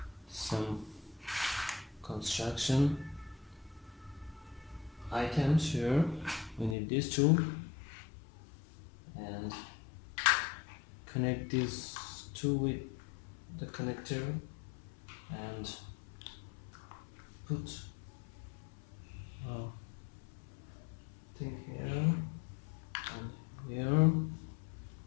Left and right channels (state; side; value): drops out; right; at 6.8 s